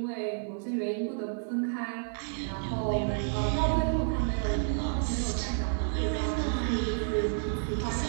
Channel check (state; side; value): silent; left; digital silence